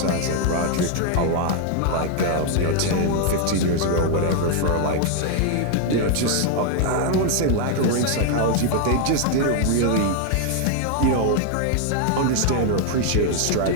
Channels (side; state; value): both; different; correlation 0.00